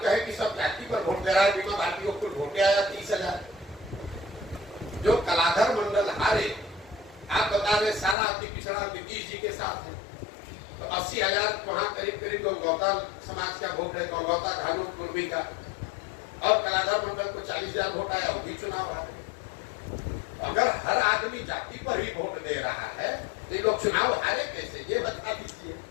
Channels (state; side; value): drops out; right; at 8.2 s